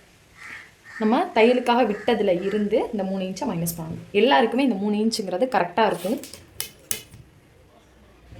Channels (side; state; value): both; identical; correlation 1.00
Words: நம்ம தையலுக்காக விட்டதில் இருந்து இந்த 3 இன்ச்சை மைனஸ் பண்ணணும். எல்லாருக்குமே இந்த 3 இன்ச்சுங்கிறது கரெக்டாக இருக்கும்.